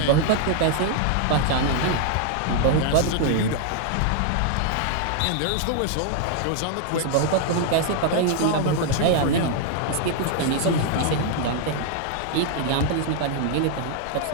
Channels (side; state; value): both; different; correlation 0.00